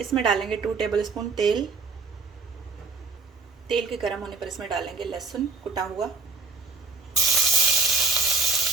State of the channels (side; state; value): left; quieter; 4.1 dB